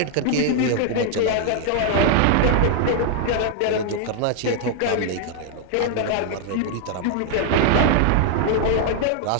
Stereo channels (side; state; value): both; different; correlation 0.00